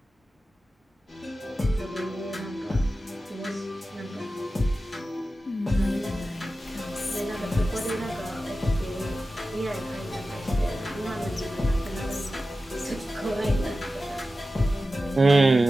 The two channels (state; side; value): normal; both; correlation 0.94